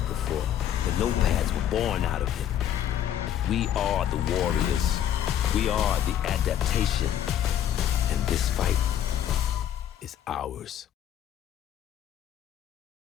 before. The nopads were born out of it. We are the warriors. We are the adaptation. And this fight is ours.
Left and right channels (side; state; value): right; quieter; 10.4 dB